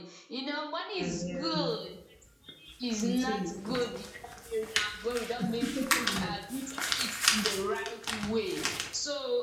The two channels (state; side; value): identical; both; correlation 1.00